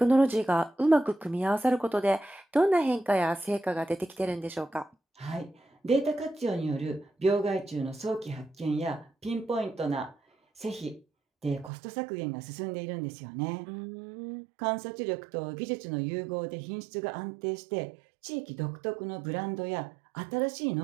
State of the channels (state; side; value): drops out; left; at 11.7 s